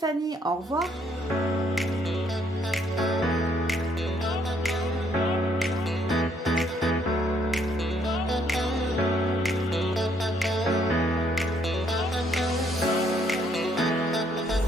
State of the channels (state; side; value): normal; both; correlation 0.69